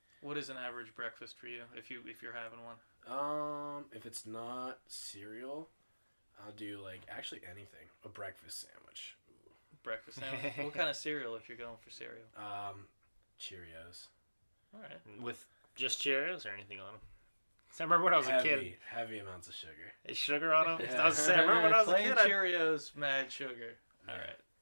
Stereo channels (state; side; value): inverted; both; correlation -1.00